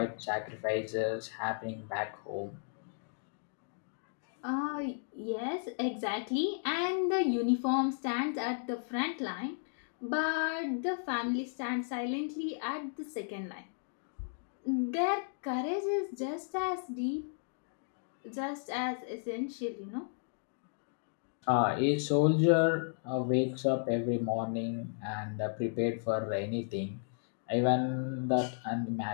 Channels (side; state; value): right; silent; digital silence